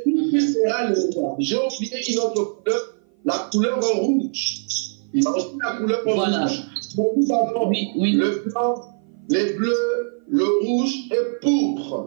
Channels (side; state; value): left; silent; 56 dB below the other